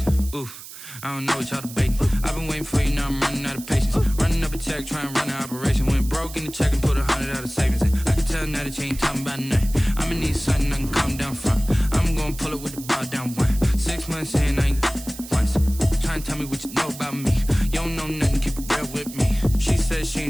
Oof, I don't know what y'all debating. I've been waiting for you, now I'm running out of patience. Running up a check, trying to run an operation. Went broke in the check and put 100 out of savings in. I can tell now that you ain't talking about nothing. I'ma need something I can calm down from. I'm gonna pull it with the bar down one. 6 months in, I ain't once. Try and tell me what you know about me. You don't know nothing, keep it real with me. She said she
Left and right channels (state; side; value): noise; right; hiss, 14 dB below the sound